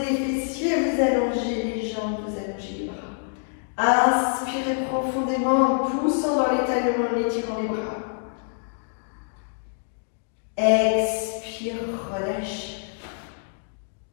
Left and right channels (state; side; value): silent; right; digital silence